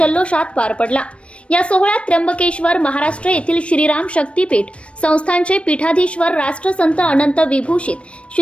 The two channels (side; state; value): right; late; 0.061 ms